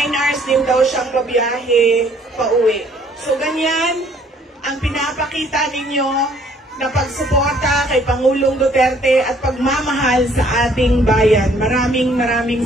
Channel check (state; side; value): normal; both; correlation 0.61